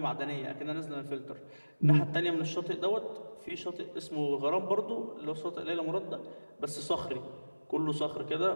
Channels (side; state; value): both; inverted; correlation -1.00